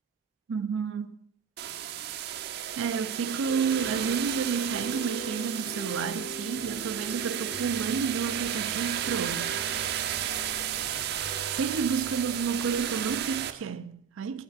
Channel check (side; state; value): left; quieter; 6.9 dB